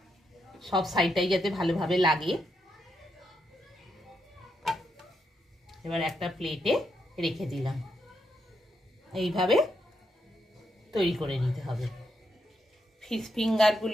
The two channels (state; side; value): normal; both; correlation 0.81